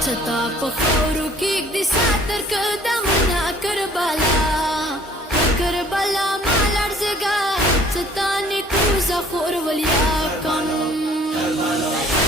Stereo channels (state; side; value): normal; both; correlation 0.56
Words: چتا پخورو کی دی ساتر قدمنا کربلا کربلا مالر زگا ستانی کوزا خور ولیا کم